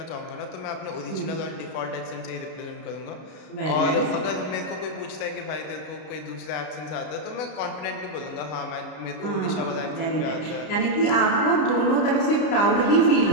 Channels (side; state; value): right; late; 33 ms